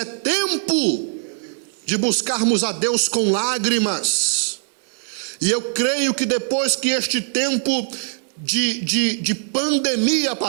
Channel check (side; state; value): left; silent; digital silence